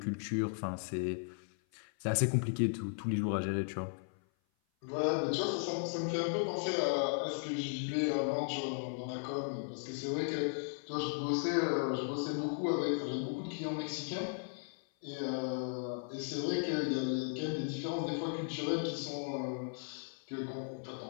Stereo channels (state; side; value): silent; right; 53 dB below the other